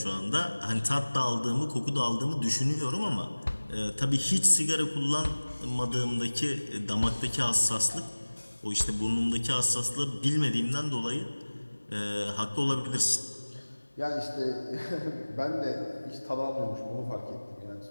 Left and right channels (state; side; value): inverted; both; correlation -1.00